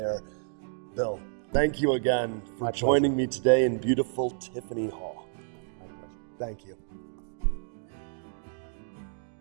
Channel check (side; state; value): left; silent; digital silence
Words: Bill, thank you again for My pleasure. joining me today in beautiful Tiffany Hall. My pleasure. Thank you.